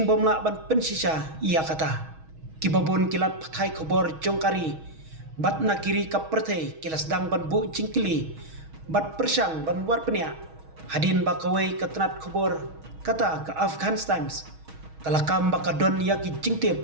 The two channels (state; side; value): late; left; 6.3 ms